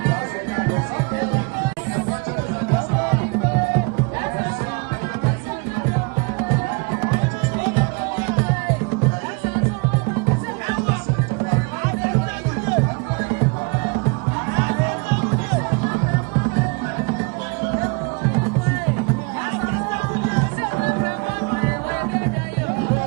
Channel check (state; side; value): quieter; left; 30.9 dB